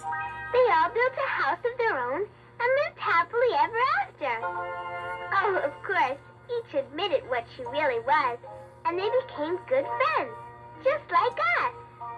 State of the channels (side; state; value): both; identical; correlation 1.00